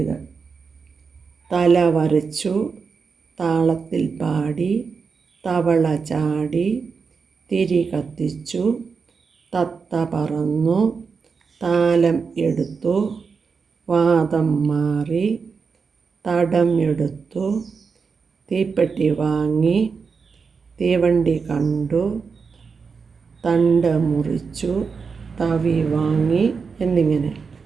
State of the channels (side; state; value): left; quieter; 5.3 dB